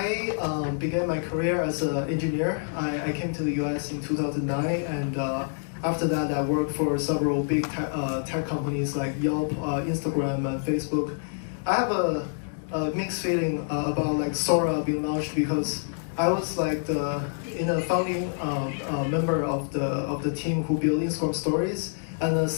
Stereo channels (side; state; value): right; silent; digital silence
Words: began my career as an engineer. I came to the US in 2009, and after that I worked for several big tech companies like Yelp, Instagram, and Facebook. I have a mixed feeling about Sora being launched because I was the founding member of the team who built Instagram Stories, and